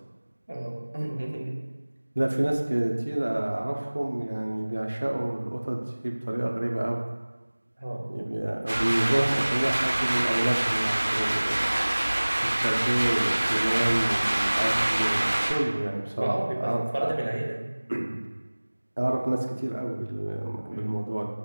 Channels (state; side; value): inverted; both; correlation -1.00